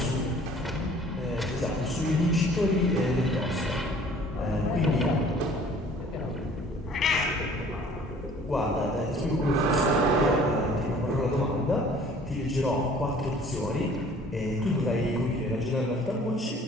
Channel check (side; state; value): both; normal; correlation 0.52